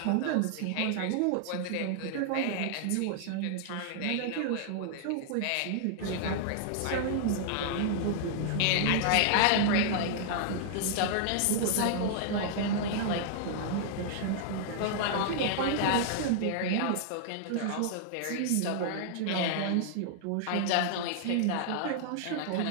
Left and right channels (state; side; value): different; both; correlation -0.01